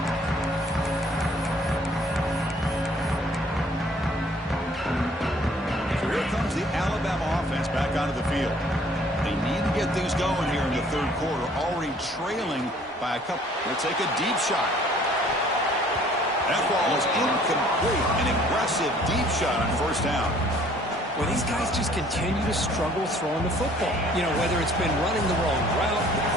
The Alabama offense back onto the field. They need to get things going here in the third quarter, already trailing by a couple. They'll take a deep shot. That ball is incomplete. An aggressive deep shot on first down. Well, these guys just continue to struggle throwing the football. You know, whether it's been running the wrong route, the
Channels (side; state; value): both; normal; correlation 0.57